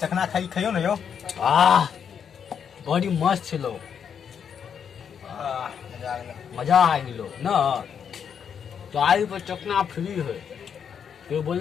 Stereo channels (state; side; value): quieter; right; 7.6 dB